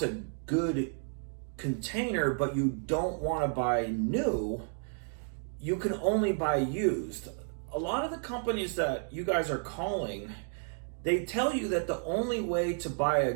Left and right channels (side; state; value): left; silent; 57 dB below the other